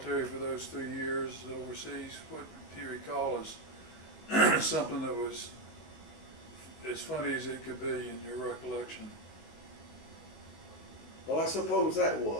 for those 3 years overseas, what do you recall as something that was as funny as it could be in your recollection? Well, I suppose that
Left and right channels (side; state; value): right; late; 19 ms